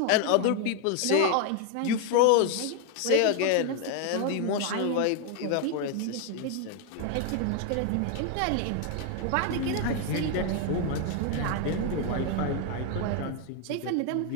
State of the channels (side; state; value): both; different; correlation 0.00